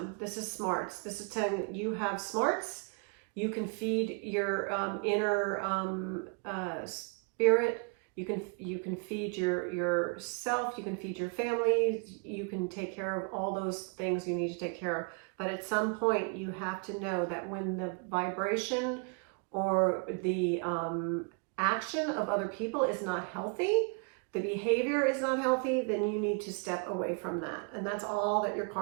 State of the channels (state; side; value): quieter; left; 38.2 dB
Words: This is smarts. This is telling that you have smarts. You can feed your inner spirit. You can feed yourself. You can feed your family. You can take care of all those things you need to take care of. But at some point, you have to know that when the vibration or the action of other people is not healthy, the behavior is not healthy, then you need to step away from that. And that's all that your